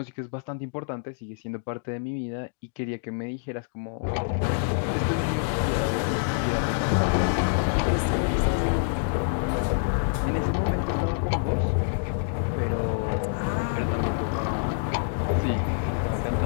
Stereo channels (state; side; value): silent; right; digital silence